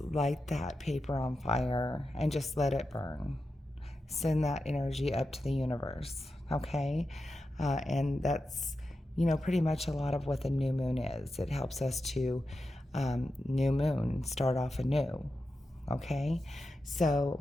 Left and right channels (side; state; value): both; normal; correlation 0.90